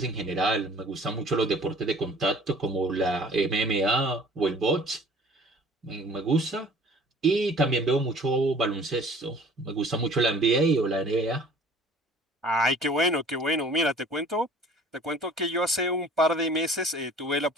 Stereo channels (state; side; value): normal; both; correlation 0.50